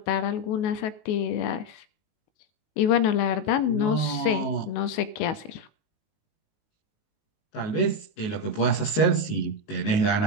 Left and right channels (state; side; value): late; right; 19 ms